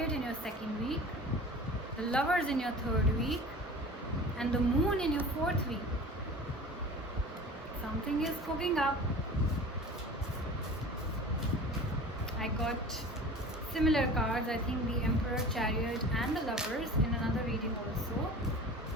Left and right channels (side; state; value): both; normal; correlation 0.39